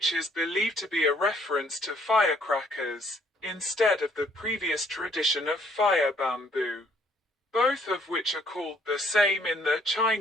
is believed to be a reference to firecrackers, instead of the previous tradition of fire bamboo, both of which are called the same in the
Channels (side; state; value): both; normal; correlation 0.64